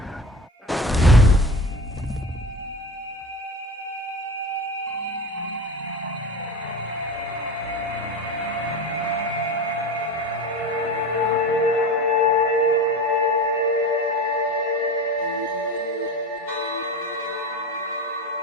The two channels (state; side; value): normal; both; correlation 0.30